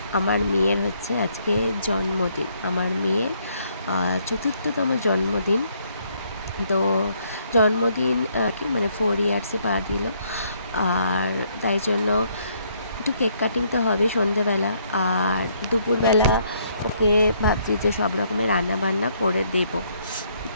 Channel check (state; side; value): inverted; both; correlation -0.69